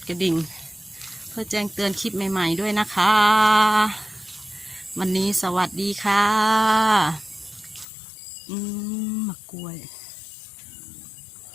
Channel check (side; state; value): right; drops out; at 7.9 s